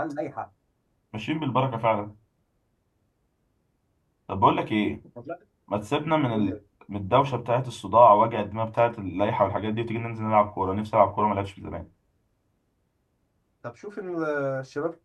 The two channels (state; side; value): identical; both; correlation 1.00